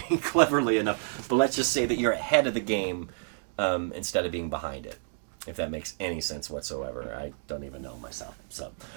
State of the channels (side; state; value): left; silent; digital silence